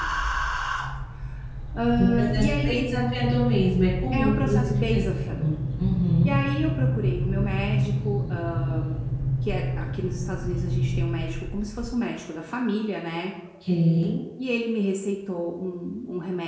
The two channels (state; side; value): identical; both; correlation 1.00